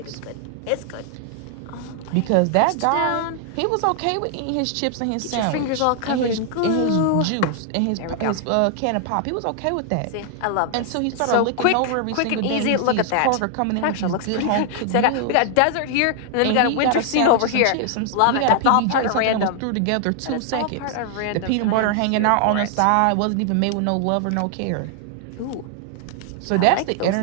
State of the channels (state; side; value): different; both; correlation 0.00